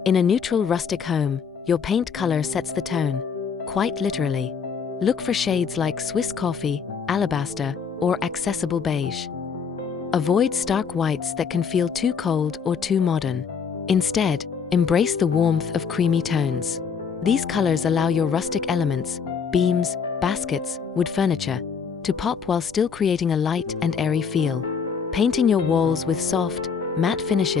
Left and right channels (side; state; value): right; quieter; 6.3 dB